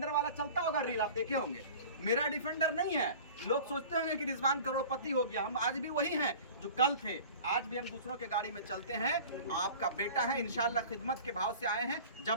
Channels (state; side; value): inverted; both; correlation -0.41